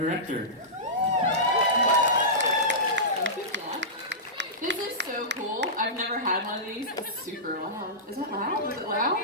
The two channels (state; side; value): normal; both; correlation -0.16